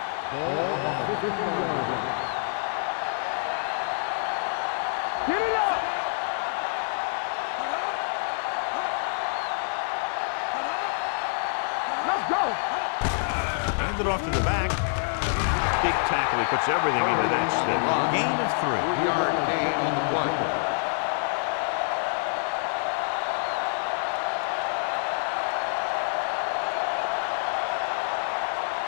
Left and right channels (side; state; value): right; silent; digital silence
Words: Ball on the 50-yard line. Get it up. Watch each other back. Score. Let's go. Hand it off to the back. Big tackle. He puts everything into that stick. Gain of 3.